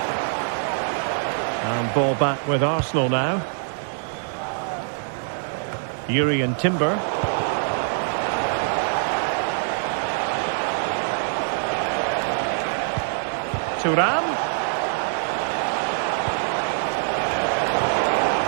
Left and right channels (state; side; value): silent; left; digital silence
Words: And ball back with Arsenal now. Urian Timber. Thuram.